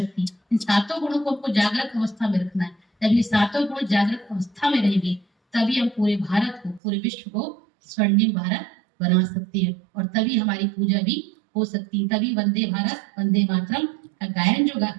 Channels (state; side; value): drops out; left; at 6.8 s